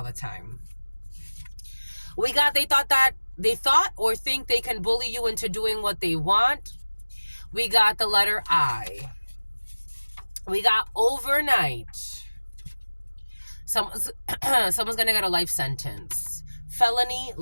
the time. We got they thought or think they can bully you into doing what they want. We got the letter I. We got overnight. Someone's gonna get a life sentence. Felony,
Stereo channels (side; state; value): both; inverted; correlation -1.00